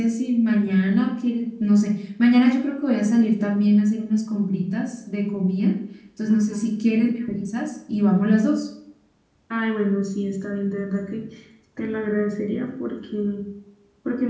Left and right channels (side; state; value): both; identical; correlation 1.00